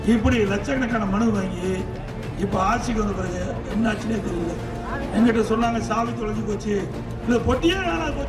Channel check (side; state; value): both; identical; correlation 1.00